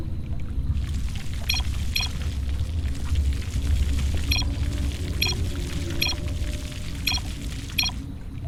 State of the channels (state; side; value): identical; both; correlation 1.00